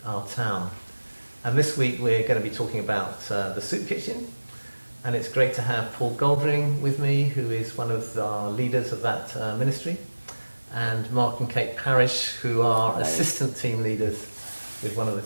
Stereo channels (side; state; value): both; inverted; correlation -1.00